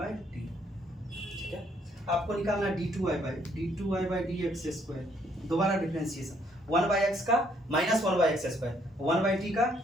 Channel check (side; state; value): both; normal; correlation 0.68